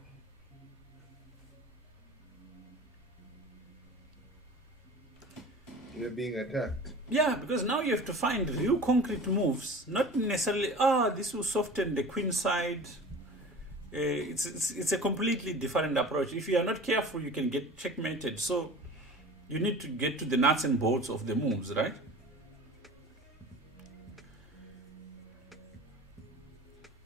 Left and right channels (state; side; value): normal; both; correlation 0.39